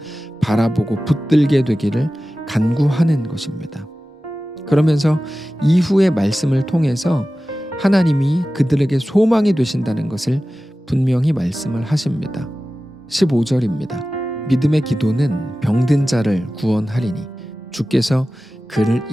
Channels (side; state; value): both; normal; correlation 0.95